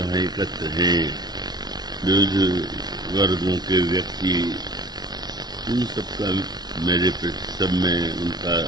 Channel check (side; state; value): left; late; 0.19 ms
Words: हैं एकत्र हैं, विविध वर्गों के व्यक्ति, उन सबका मेरे सब में उनका